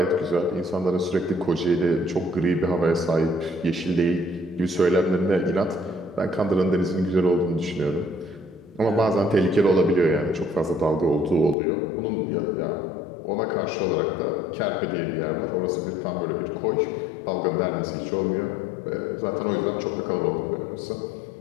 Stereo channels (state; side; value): drops out; right; at 11.6 s